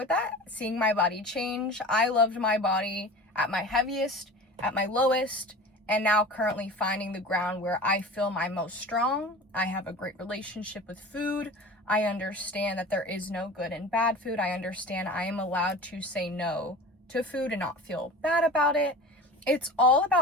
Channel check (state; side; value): normal; both; correlation 0.36